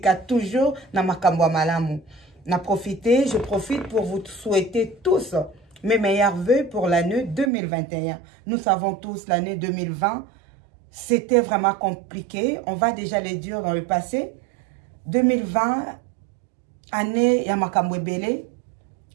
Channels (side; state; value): left; drops out; at 7.5 s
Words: toujours na makamba malamu. Je profite pour vous souhaiter tous mes meilleurs vœux pour l'année 2021. Nous savons tous l'année 2020, c'était vraiment compliqué. On va déjà les dire dans le passé. 2020, année ya makambo ebele,